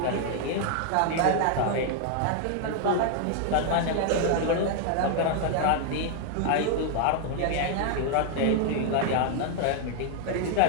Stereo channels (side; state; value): both; different; correlation 0.00